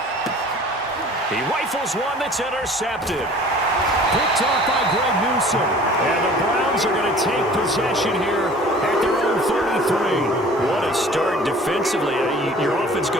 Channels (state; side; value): normal; both; correlation 0.48